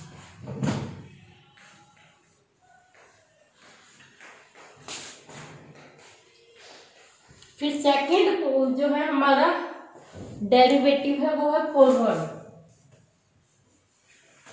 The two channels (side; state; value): both; identical; correlation 1.00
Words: फिर सेकंड जो है हमारा डेरिवेटिव है वो है फॉरवर्ड।